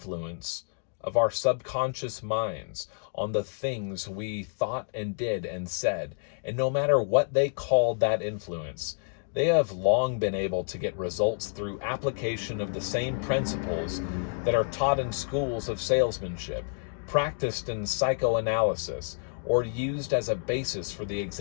of our subconscious minds on the things we thought and did and said, and no matter what they called that influence, they have long been able to get results through application of the same principles that are taught in schools of salesmanship, practiced in psychoanalysis, or used as a basis for the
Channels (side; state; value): right; silent; digital silence